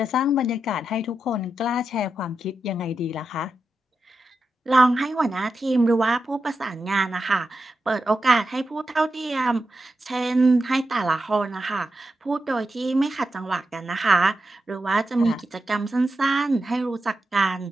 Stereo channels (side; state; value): both; normal; correlation 0.88